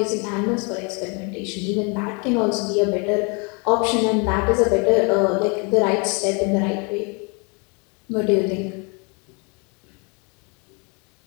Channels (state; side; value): quieter; right; 33.2 dB